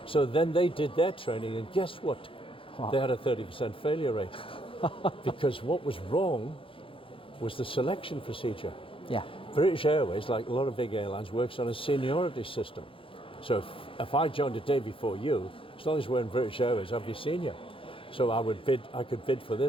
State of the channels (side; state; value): right; late; 0.26 ms